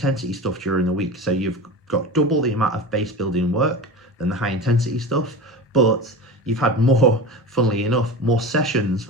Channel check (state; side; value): normal; both; correlation 0.29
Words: stuff during the week. So you've got double the amount of base building work than the high intensity stuff, but you've had more, funnily enough, more sessions